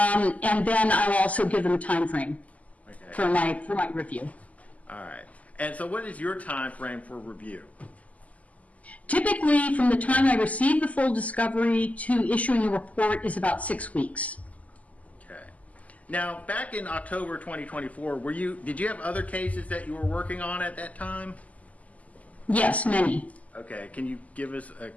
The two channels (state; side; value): late; right; 0.072 ms